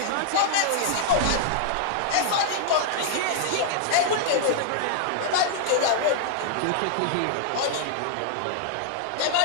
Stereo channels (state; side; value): different; both; correlation -0.01